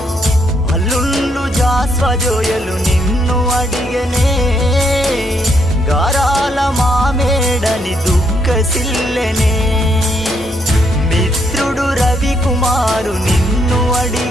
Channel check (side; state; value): both; normal; correlation 0.74